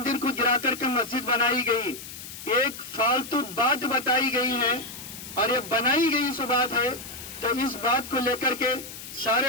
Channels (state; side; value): noise; left; hiss, 12 dB below the sound